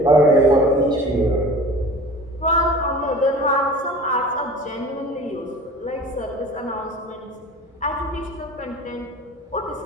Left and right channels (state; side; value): normal; both; correlation 0.39